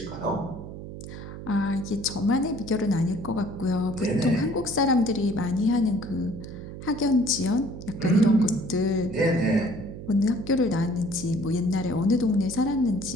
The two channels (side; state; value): right; noise; hum, 11 dB below the sound